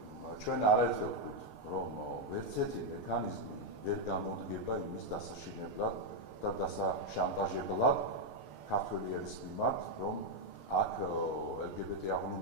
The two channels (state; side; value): late; right; 6.7 ms